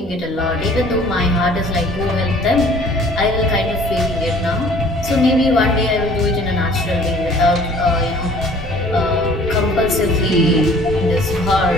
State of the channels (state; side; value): normal; both; correlation 0.52